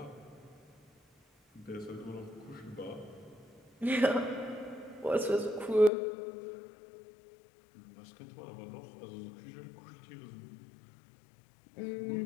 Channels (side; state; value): right; drops out; at 5.9 s